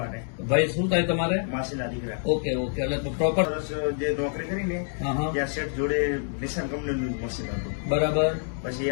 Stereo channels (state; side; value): silent; right; digital silence